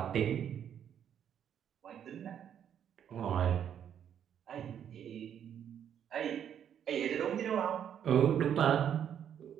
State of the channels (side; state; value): left; quieter; 9.1 dB